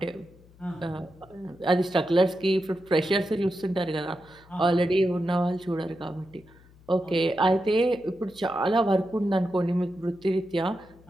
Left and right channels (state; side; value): noise; left; hum, 26 dB below the sound